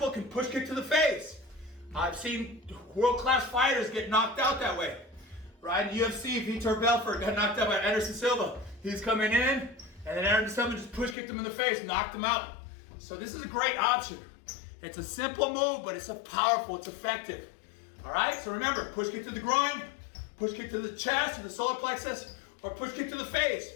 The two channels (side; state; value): right; drops out; at 11.2 s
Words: can push kick to the face. I've seen world-class fighters get knocked out that way. Right? In UFC, Vitor Belfort got knocked out by Anderson Silva. He's coming in, and then Anderson Silva just push kicked him in the face, knocked him out. So this is a great option. It's a simple move, but it's powerful, it's effective. All right, so remember, push kick to the groin, push kick to the chest, to the solar plexus, or push kick to the